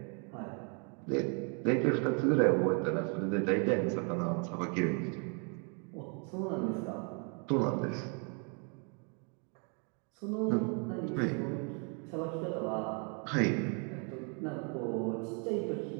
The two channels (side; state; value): left; quieter; 37.0 dB